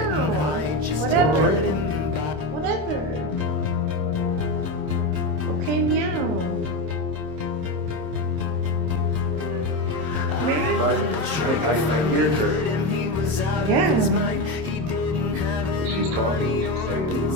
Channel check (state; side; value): late; left; 26 ms